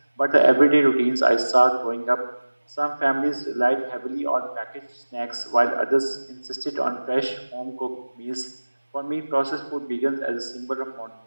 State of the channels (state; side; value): inverted; both; correlation -1.00